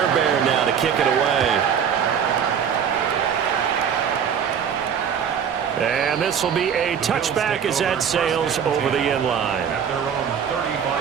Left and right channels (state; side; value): quieter; left; 7.7 dB